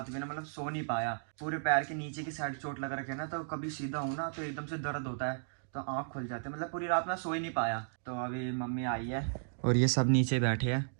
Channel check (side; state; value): left; silent; digital silence